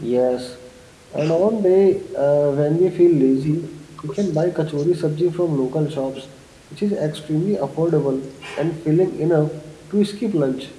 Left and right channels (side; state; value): both; identical; correlation 1.00